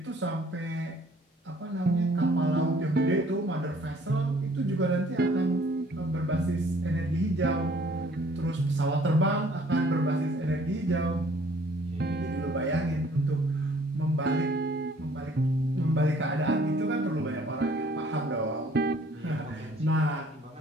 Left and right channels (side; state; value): both; normal; correlation 0.58